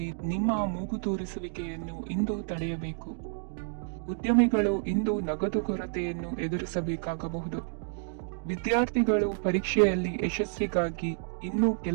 ನಿಮ್ಮ ಮೂಗು ತೂರಿಸುವಿಕೆಯನ್ನು ಇಂದು ತಡೆಯಬೇಕು. ಉದ್ಯಮಿಗಳು ಇಂದು ನಗದು ಕೊರತೆಯನ್ನು ಎದುರಿಸಬೇಕಾಗಬಹುದು. ವಿದ್ಯಾರ್ಥಿಗಳು ಪರೀಕ್ಷೆಯಲ್ಲಿ ಯಶಸ್ವಿಗಾಗಿ ಇನ್ನೂ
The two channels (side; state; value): left; silent; digital silence